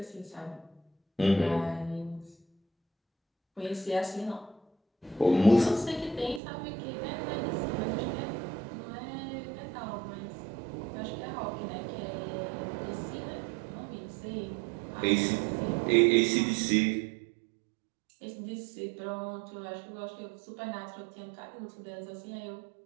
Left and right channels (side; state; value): left; drops out; at 6.4 s